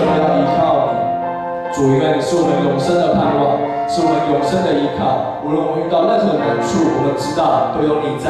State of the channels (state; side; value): identical; both; correlation 1.00